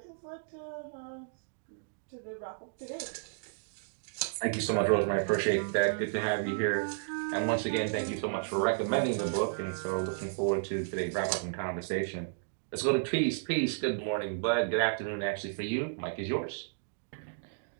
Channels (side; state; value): left; silent; digital silence